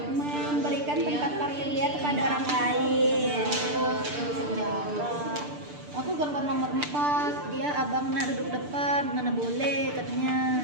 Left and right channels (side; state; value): left; late; 6.8 ms